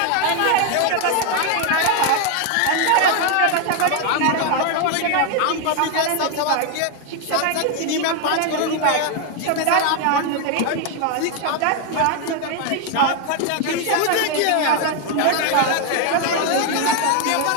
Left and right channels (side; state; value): both; different; correlation 0.01